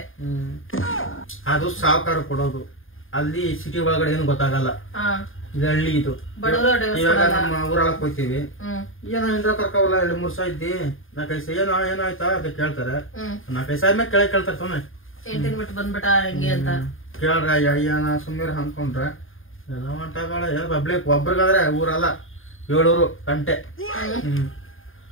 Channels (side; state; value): right; late; 0.59 ms